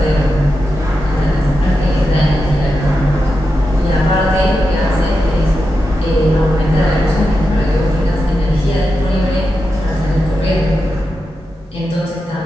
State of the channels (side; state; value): both; normal; correlation 0.89